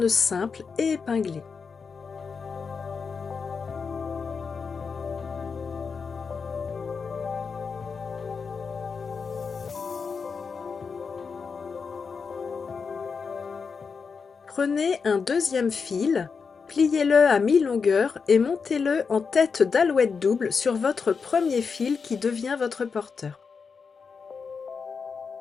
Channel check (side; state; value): right; quieter; 5.4 dB